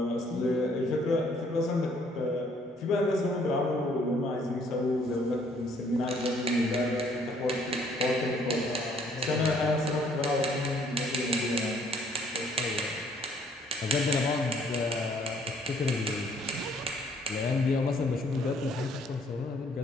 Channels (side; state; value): both; normal; correlation 0.63